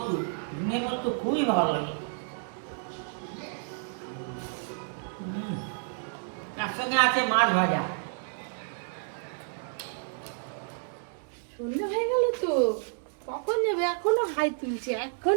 ঝিঙে পোস্ত খুবই ভালো লাগে। তার সঙ্গে আছে মাছ ভাজা। সন্ধ্যা হয়ে গেল তো, কখন যাবে? এখনো হাই তুলছে,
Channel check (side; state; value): left; silent; digital silence